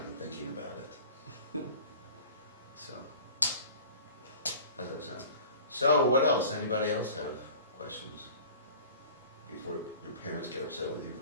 thinking about it. So, how's that sound? So, what else? Anybody else have questions? Before your parents get upset with you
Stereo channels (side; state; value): both; inverted; correlation -0.43